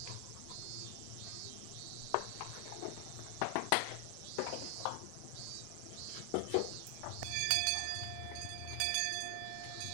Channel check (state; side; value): different; both; correlation 0.00